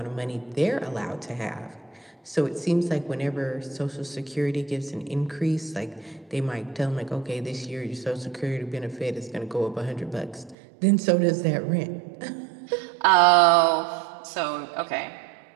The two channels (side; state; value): left; drops out; at 10.6 s